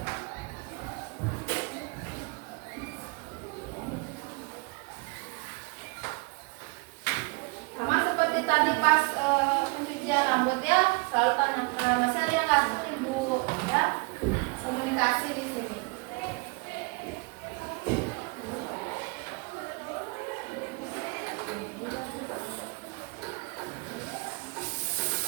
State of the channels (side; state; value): left; quieter; 28.7 dB